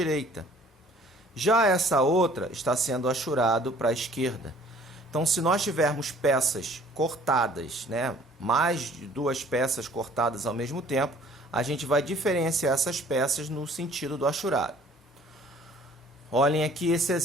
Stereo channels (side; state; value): both; normal; correlation 0.54